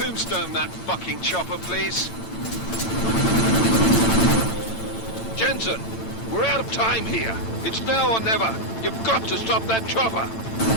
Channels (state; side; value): late; right; 8.9 ms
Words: that fucking chopper, please. Jensen! We're out of time here. It's now or never. You've got to stop that chopper.